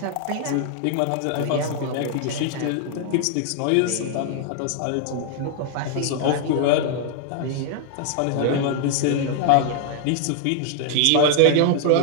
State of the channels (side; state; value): both; different; correlation 0.00